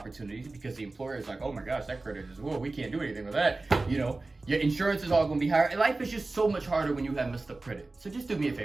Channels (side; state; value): left; quieter; 3.3 dB